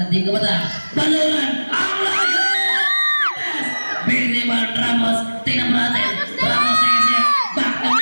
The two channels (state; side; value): inverted; both; correlation -1.00